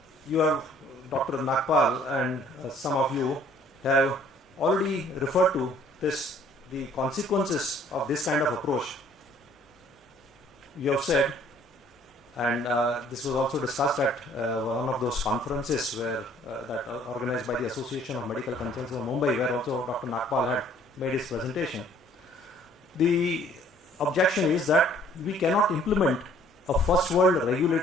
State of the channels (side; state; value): both; normal; correlation 0.58